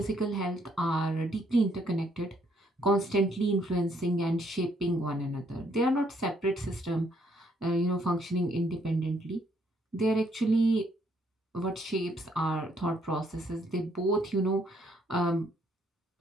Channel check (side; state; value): both; normal; correlation 0.69